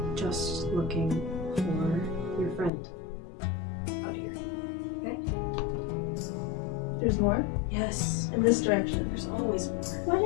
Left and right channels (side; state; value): right; drops out; at 2.7 s